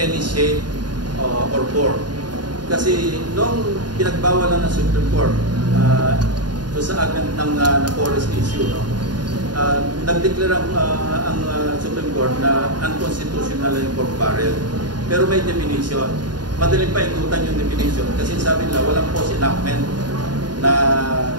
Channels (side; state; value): left; late; 0.70 ms